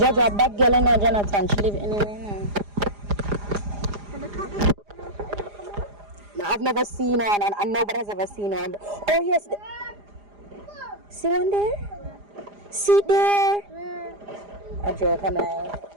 a bad girl, and Jonathan, she live anywhere now. No, I've never seen one, and nobody has ever seen one. Oh yes, see one there? See there? A joke, I'm lying.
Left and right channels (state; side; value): late; left; 4.9 ms